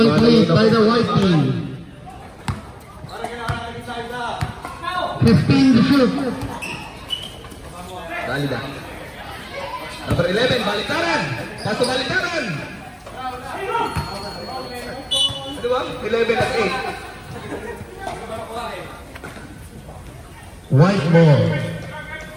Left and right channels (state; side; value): identical; both; correlation 1.00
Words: lead by the White team. 15 to shoot. Dali na. Number 11, baliktaran. Paso baliktaran. Ano ba? 11 at 8. White ball.